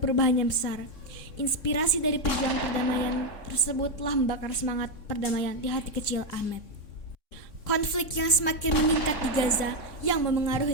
perubahan yang besar. Inspirasi dari pejuang perdamaian tersebut telah membakar semangat perdamaian di hati kecil Ahmed. Konflik yang semakin meningkat di Gaza yang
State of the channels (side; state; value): right; late; 3.6 ms